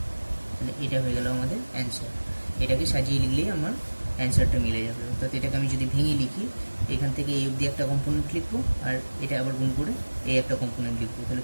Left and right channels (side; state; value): both; inverted; correlation -1.00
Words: তাহলে এটা হয়ে গেল আমাদের অ্যান্সার। এটাকে সাজিয়ে লিখলেই আমার অ্যান্সারটা মিলে যাবে। অর্থাৎ এটাকে আমি যদি ভেঙে লিখি, এখান থেকে এই অবধি একটা কম্পোনেন্ট লিখবো, আর এটা আবার গুণ করে এই একটা কম্পোনেন্ট লিখবো। তাহলে